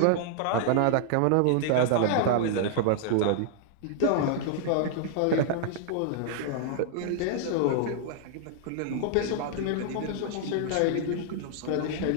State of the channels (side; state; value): both; different; correlation -0.01